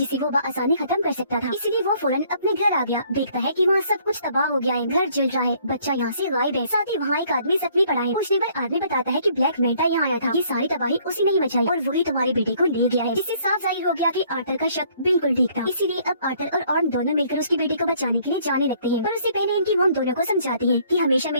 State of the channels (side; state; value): both; inverted; correlation -0.62